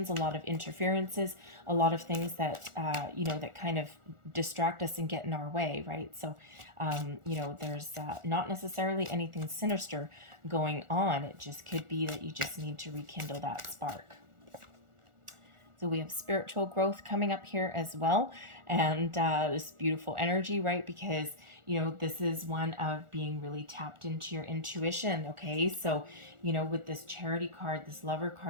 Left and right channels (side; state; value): left; late; 1.4 ms